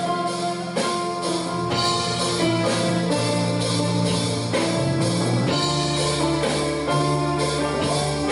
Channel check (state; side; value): identical; both; correlation 1.00